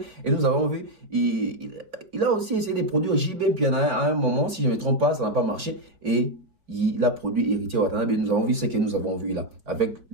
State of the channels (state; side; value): late; left; 4.6 ms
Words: Et nous avons vu, il a aussi essayé de produire JB Piana à un moment, si je ne me trompe pas, ça n'a pas marché. Et il a produit Héritier Watanabe, et nous avons vu ce que nous avons vu là, avec